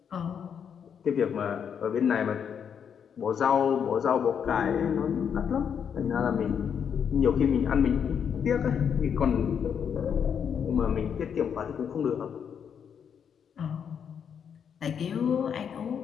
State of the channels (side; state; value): right; quieter; 7.6 dB